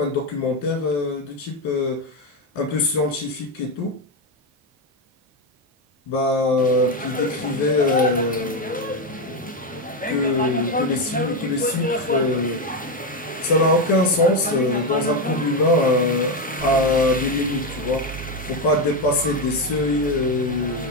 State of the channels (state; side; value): normal; both; correlation 0.10